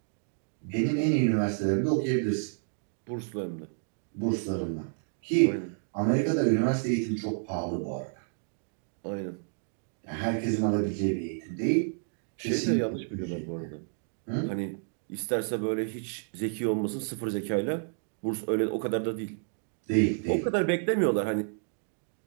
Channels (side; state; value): left; silent; digital silence